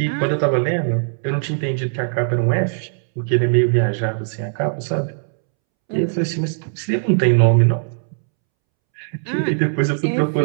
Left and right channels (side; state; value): left; silent; 66 dB below the other